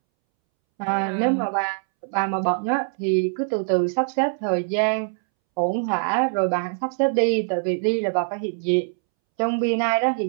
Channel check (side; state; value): left; silent; 63 dB below the other